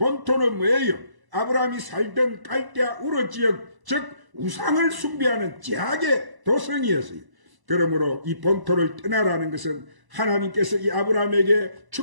뭐예요? 아브라함이 살던 갈대아 우르 지역, 즉 우상을 숭배하는 제약의 도성이었어요. 그러므로 이 본토를 떠나라는 것은 하나님께서 이 아브라함에게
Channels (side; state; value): left; late; 1.0 ms